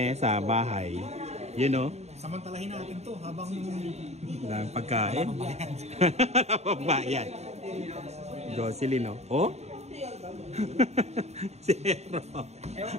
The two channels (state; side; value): late; left; 0.32 ms